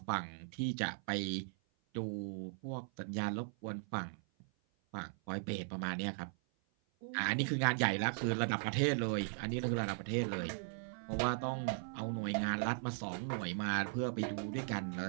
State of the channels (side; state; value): left; silent; 52 dB below the other